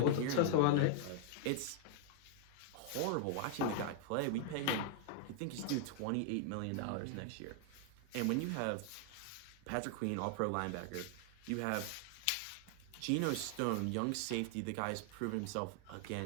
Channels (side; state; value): both; different; correlation 0.00